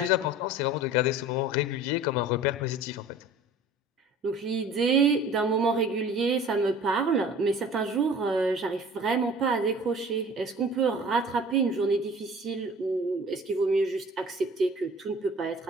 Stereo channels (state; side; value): normal; both; correlation 0.45